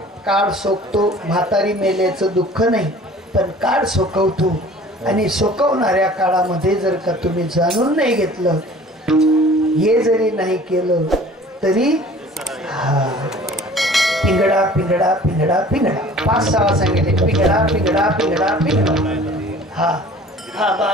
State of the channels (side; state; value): both; normal; correlation 0.47